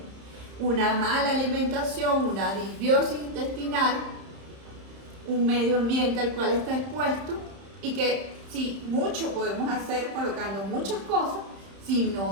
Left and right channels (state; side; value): late; left; 31 ms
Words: Una mala alimentación, una disbiosis intestinal, un medio ambiente al cual está expuesto y que sí, mucho podemos hacer colocando muchas cosas si